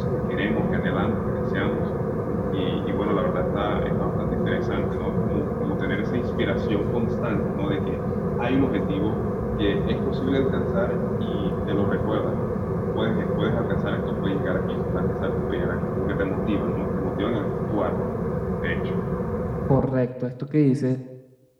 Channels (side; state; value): both; identical; correlation 1.00